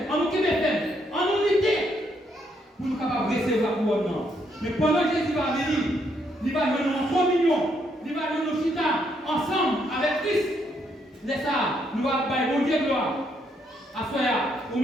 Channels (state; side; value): normal; both; correlation 0.74